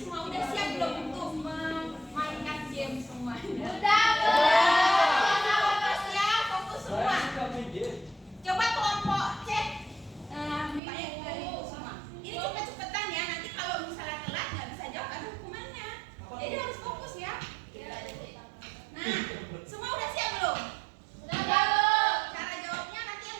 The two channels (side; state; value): left; drops out; at 10.8 s